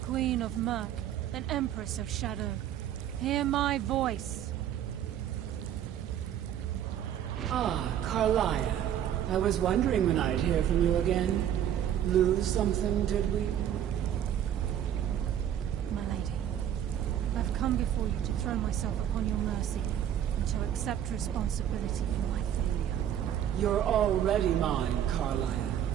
Queen of Murk, and Empress of Shadow. Hear my voice. Ah, Karliah. I was wondering when I'd hear from you again. Lose something, did we? My lady, I've come before you to throw myself upon your mercy and to accept responsibility for my failure. You're already mine, Karliah.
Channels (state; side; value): quieter; left; 10.3 dB